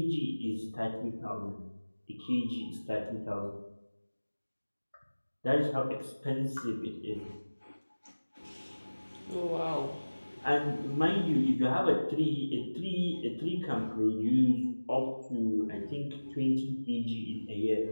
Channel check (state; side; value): inverted; both; correlation -1.00